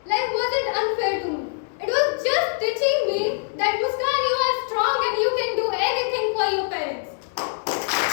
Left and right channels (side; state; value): right; silent; 63 dB below the other